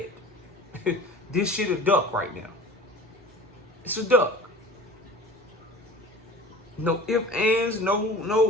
This shit a duck right now. It's a duck. No ifs, ands,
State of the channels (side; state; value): both; normal; correlation 0.39